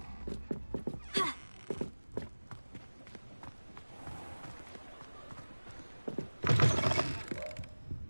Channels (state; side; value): inverted; both; correlation -1.00